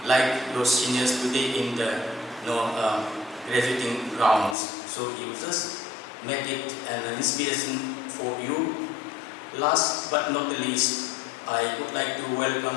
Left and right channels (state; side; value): drops out; right; at 4.5 s